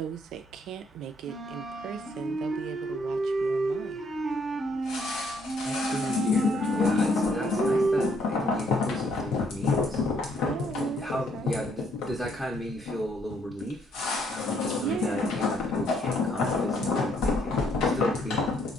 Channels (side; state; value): both; normal; correlation 0.69